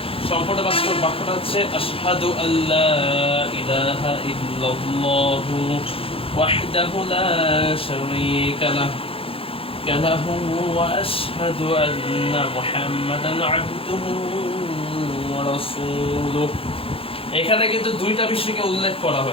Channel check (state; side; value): late; right; 0.27 ms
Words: সম্পূর্ণ বাক্যটা হচ্ছে আশহাদু আল্লা ইলাহা ইল্লাল্লাহু ওয়াহদাহু লা শারীকা লাহু ওয়া আশহাদু আন্না মুহাম্মাদান আবদুহু ওয়া রাসূলুহু। এখানে কিন্তু দুইটা বিষয়কে উল্লেখ করা